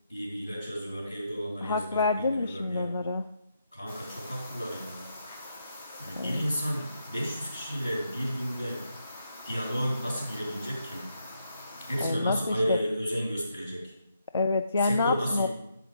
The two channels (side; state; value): both; inverted; correlation -0.79